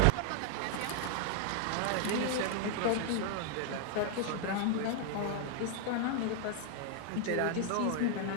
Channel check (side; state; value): both; different; correlation 0.00